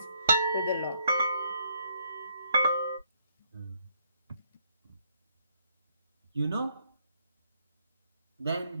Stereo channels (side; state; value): both; inverted; correlation -0.71